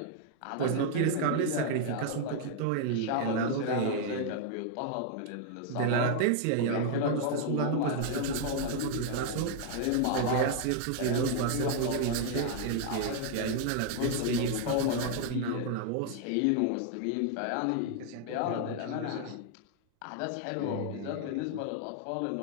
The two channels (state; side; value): different; both; correlation 0.00